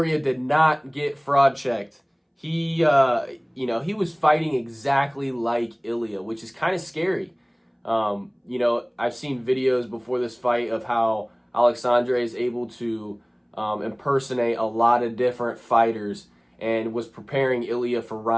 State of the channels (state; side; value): identical; both; correlation 1.00